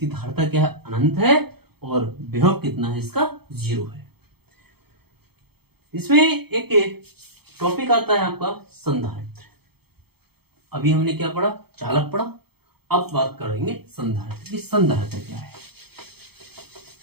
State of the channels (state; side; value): late; left; 0.96 ms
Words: धारिता क्या है, अनंत है। और विभव कितना है इसका, 0 है। इसमें एक टॉपिक आता है आपका संधारित्र। अभी हमने क्या पढ़ा, चालक पढ़ा। अब बात करेंगे संधारित्र की। संधारित्र क्या है,